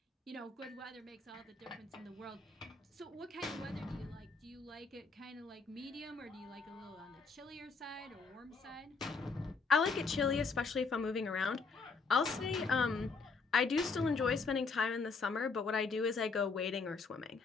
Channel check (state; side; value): quieter; right; 4.5 dB